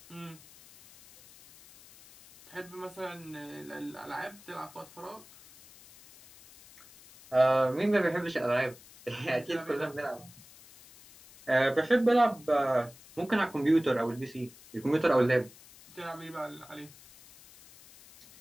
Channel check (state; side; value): noise; left; hiss, 22 dB below the sound